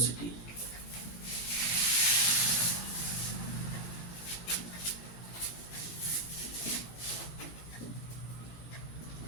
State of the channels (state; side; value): late; right; 17 ms